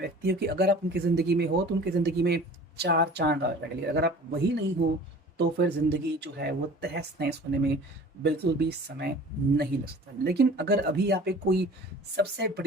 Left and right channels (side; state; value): both; normal; correlation 0.44